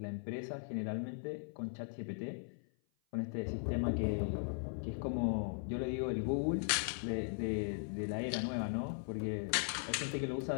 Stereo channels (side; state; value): right; silent; 52 dB below the other